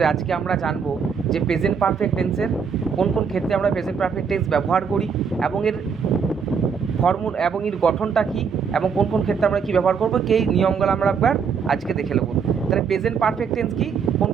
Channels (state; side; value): quieter; left; 6.3 dB